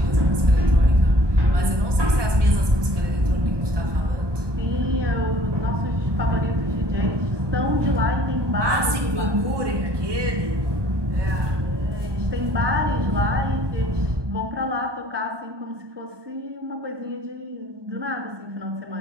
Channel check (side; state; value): left; late; 1.2 ms